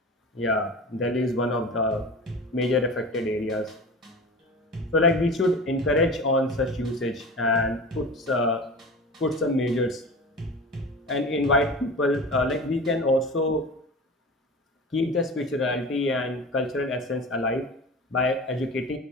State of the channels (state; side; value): normal; both; correlation 0.33